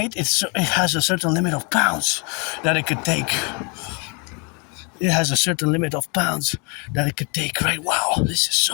it has a certain limit of pounds that it could take. It has a certain limit of pounds that it could take, right? Wow, this is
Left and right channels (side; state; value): right; quieter; 33.3 dB